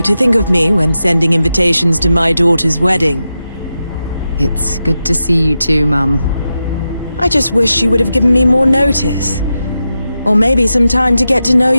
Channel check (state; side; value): inverted; both; correlation -0.90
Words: to think of me when sending invitations to my daughter's wedding. It's good to see you too, Mum. I just wish you would have given me more notice. Or maybe some time to get to know